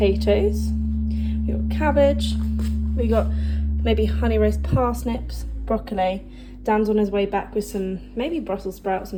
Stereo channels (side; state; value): both; identical; correlation 1.00